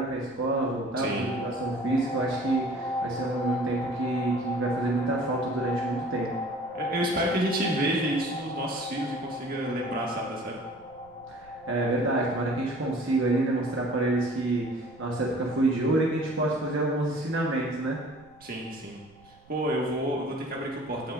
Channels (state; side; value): noise; right; rumble, 28 dB below the sound